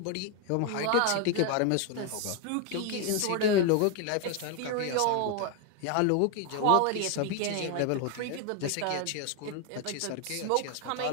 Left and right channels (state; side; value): different; both; correlation 0.01